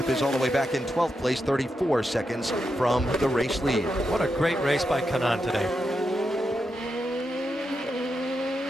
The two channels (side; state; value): both; normal; correlation 0.86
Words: is all the way back in 12th place, 34 seconds from the race lead. What a great race by Kanaan today.